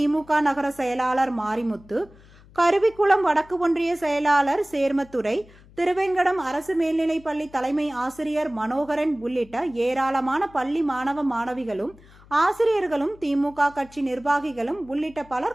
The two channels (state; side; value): noise; left; hum, 24 dB below the sound